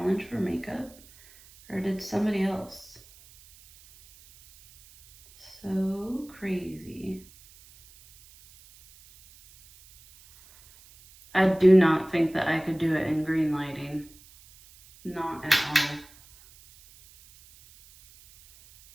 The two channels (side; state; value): right; noise; hiss, 25 dB below the sound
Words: for makeup? Or did somebody else? So crazy. I do not think that I could do it in green lighting. Not at all.